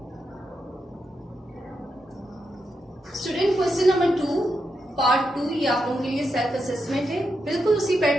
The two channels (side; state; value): both; normal; correlation 0.85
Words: स्टूडेंट क्वेश्चन नंबर 2 पार्ट 2 ये आप लोगों के लिए सेल्फ असेसमेंट है। बिल्कुल उसी